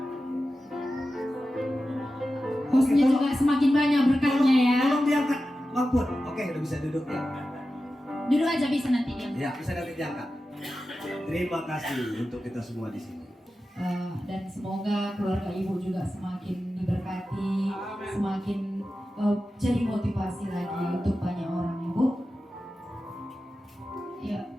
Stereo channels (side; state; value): both; normal; correlation 0.93